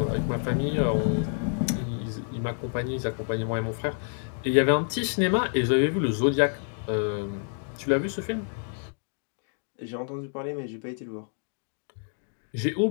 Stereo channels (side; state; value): right; silent; 59 dB below the other